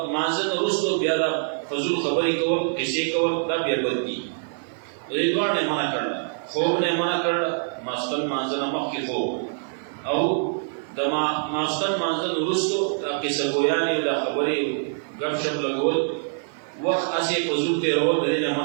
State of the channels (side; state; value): left; silent; digital silence